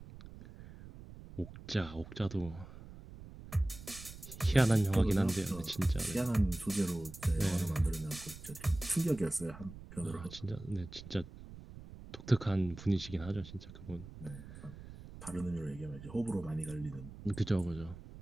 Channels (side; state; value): right; noise; rumble, 15 dB below the sound